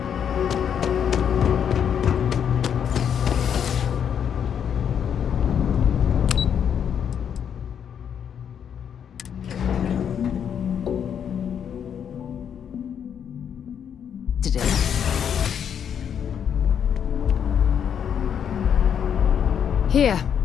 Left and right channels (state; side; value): quieter; right; 8.2 dB